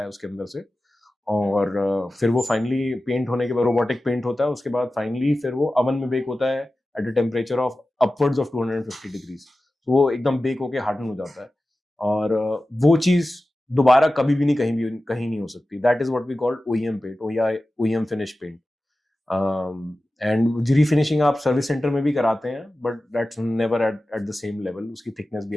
है उसके अंदर से, और फिर वो फाइनली पेंट होने के बाद रोबोटिक पेंट होता है, उसके बाद फाइनली फिर वो अवन में बेक होता है at a temperature of upwards of 250 डिग्रीज. तो वो एकदम बेक होके हार्डन हो जाता है, और वो चीज दोबारा कभी भी कहीं नहीं हो सकती. That is what we called OEM paint या OEM finish paint. And refinishing आप सर्विस सेंटर में भी कराते हैं, but that's never at the same level. उसकी थिकनेस भी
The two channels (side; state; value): both; normal; correlation 0.95